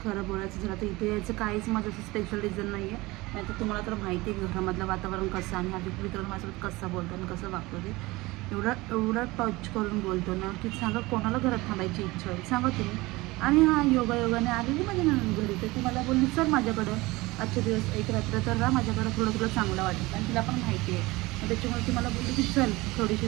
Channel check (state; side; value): quieter; left; 21.3 dB